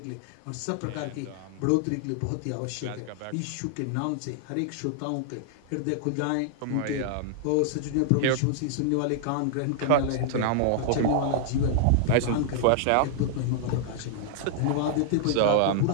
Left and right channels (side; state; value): both; different; correlation -0.01